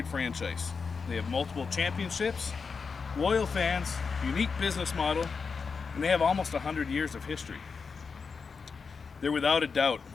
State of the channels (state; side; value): quieter; right; 5.2 dB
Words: franchise. They have multiple championships, loyal fans, unique business model, and they have almost 100 years of history. They're without a doubt